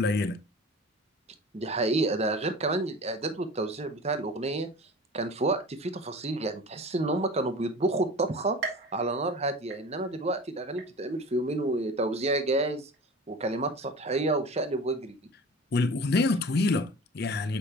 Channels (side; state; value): both; normal; correlation 0.38